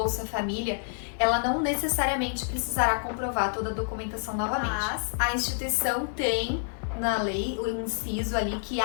Família, ela não necessariamente precisará comprovar toda a documentação novamente. Mas a instituição tem na lei o inciso ali que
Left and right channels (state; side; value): silent; right; digital silence